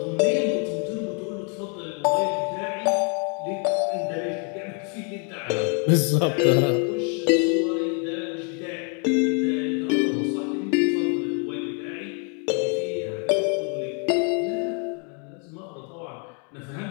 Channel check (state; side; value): quieter; right; 38.4 dB